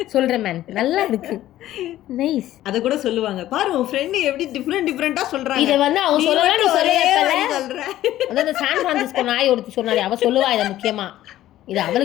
சொல்றேன் மேன். நல்லா இருக்கு. நைஸ். அத கூட சொல்லுவாங்க. பாரு உன் ஃப்ரெண்ட் எப்படி டிஃபரெண்டா சொல்றாங்க. இத வந்து அவ சொல்லலாம், நீ சொல்ற. அதான் சான் பிரான்சிஸ்கோ நாய் ஒருத்தி சொன்னாலே அவ சொல்லுவா இத முக்கியமா. இது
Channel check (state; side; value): quieter; right; 13.9 dB